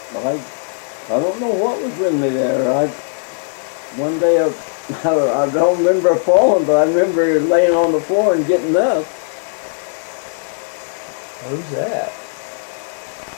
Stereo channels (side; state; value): right; silent; digital silence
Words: I don't know what was with me there. One day I don't remember falling, but I remember laying on the floor and getting up. Who's that?